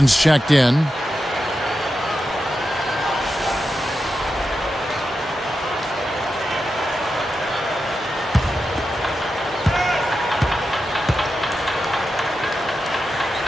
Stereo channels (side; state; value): both; normal; correlation 0.89